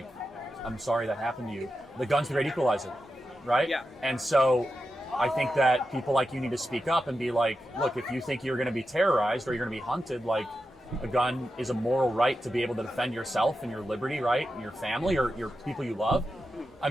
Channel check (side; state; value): both; normal; correlation 0.90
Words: I'm sorry that happened to you. The gun's the great equalizer, right? Yeah. And so I think that people like you need to speak up and be like, look, if you think you're going to be terrorized or you're going to be hunted, like, a gun is a moral right to be able to defend yourself and your liberty, right? And your family or your people you love. I